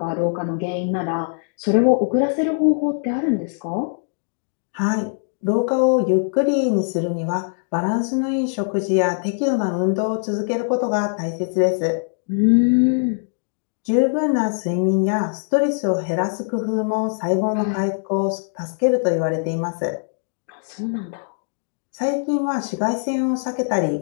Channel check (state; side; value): silent; right; digital silence